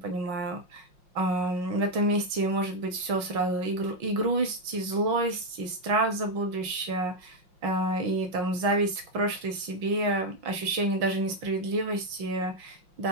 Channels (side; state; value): left; late; 5.6 ms